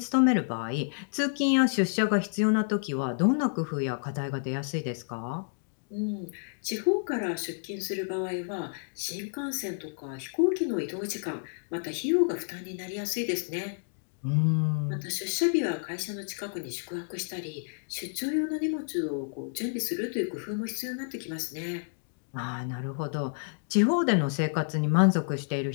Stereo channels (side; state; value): right; silent; digital silence